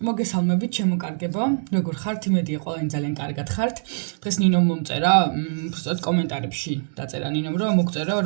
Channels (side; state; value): left; silent; digital silence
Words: შემოკარგებო. როგორ ხართ? იმედია ყველანი ძალიან კარგად ხართ. დღეს ნინომ მომწერა, უბრალოდ კომენტარებში დაწერა ნინომ, რომ მოგწერო